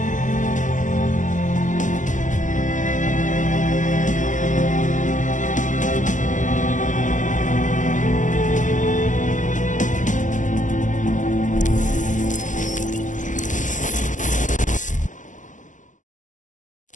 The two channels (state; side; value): late; right; 0.37 ms